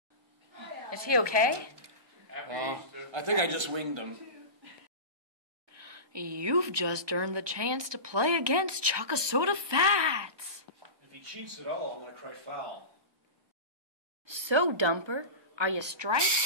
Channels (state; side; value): late; left; 1.2 ms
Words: Is he okay? I think I just winged him. You've just earned the chance to play against Chuck-a-Soda Fats. If he cheats at all, I'm going to cry foul. So, Dumper, are you